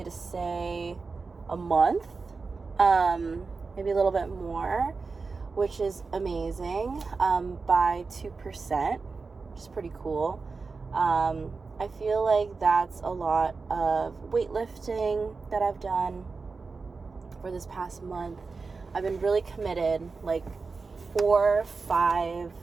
to say a month, maybe a little bit more, which is amazing, by 2%, which is pretty cool. I feel like that's a lot of weightlifting that I've done for this past month. I've been really committed, like 4-5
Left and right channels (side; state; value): left; quieter; 4.4 dB